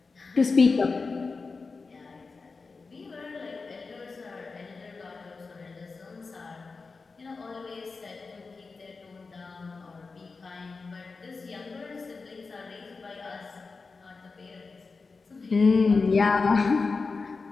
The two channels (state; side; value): quieter; right; 4.3 dB